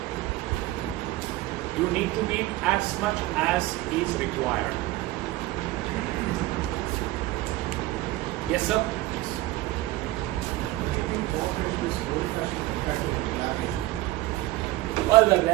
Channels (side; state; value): left; quieter; 17.6 dB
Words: You need to be as much as is required. Yes, sir. Well,